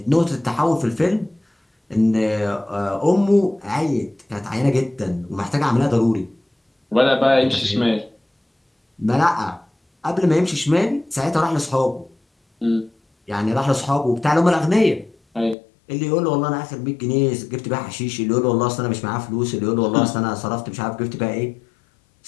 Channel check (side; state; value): right; drops out; at 15.6 s